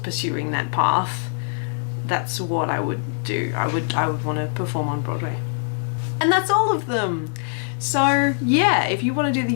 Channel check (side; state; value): right; silent; digital silence